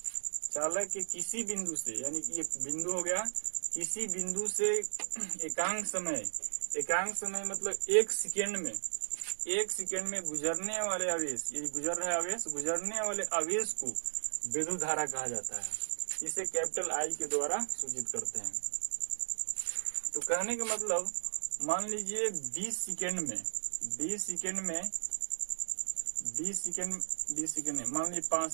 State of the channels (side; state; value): left; silent; digital silence